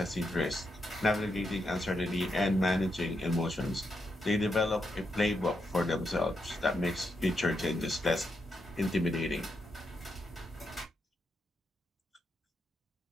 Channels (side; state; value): both; normal; correlation 0.83